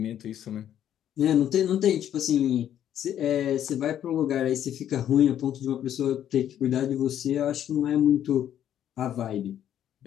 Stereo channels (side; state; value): right; quieter; 10.6 dB